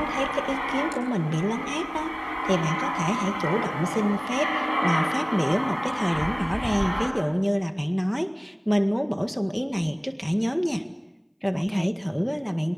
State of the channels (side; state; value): both; identical; correlation 1.00